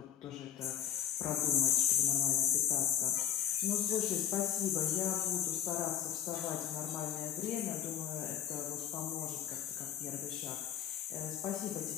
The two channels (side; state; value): right; quieter; 10.0 dB